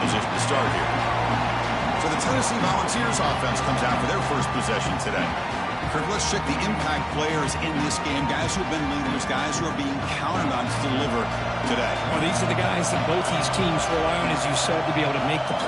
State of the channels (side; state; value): both; identical; correlation 1.00